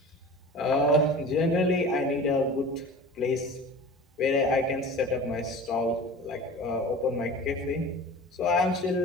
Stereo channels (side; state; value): both; normal; correlation 0.38